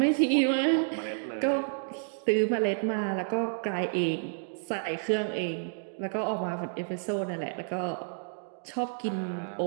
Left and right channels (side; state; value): left; silent; digital silence